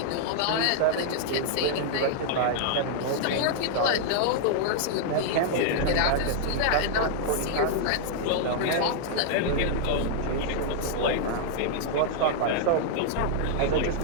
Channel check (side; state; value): both; different; correlation -0.01